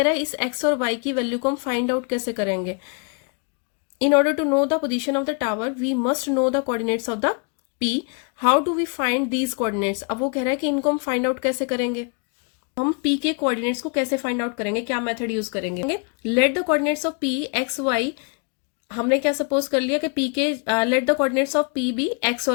रहा है इस एक्स और वाई की वैल्यू को हम फाइंड आउट कैसे करेंगे। In order to know the position of the tower we must know the coordinates of the P. How do we find these coordinates. अब वो कह रहा है कि इनको हम फाइंड आउट कैसे करेंगे, हम पी के कोऑर्डिनेट्स को कैसे फाइंड आउट करेंगे, क्या मेथड यूज करेंगे। Let the coordinates of P x y, हमने क्या सपोज कर लिया कि पी के let the coordinates of P be x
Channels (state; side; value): quieter; right; 37.8 dB